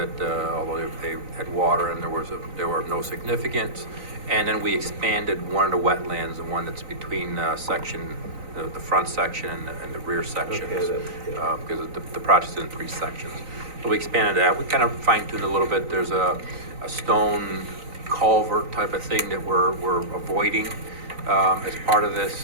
although they had water and there were of no significance. And then we expanded one of the wetlands, the one that's between the front section and the rear sections, because the project's in 3 sections. So we expanded that. We kind of fine-tuned a little bit. There's a stone culvert type of thing that we're avoiding as part of this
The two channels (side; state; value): left; late; 3.9 ms